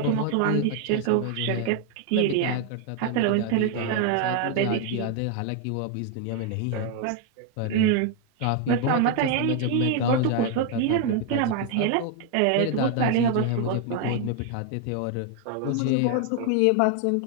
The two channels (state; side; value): different; both; correlation 0.00